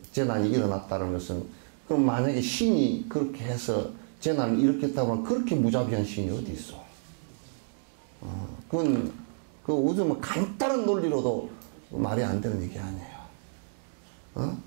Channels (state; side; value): silent; left; digital silence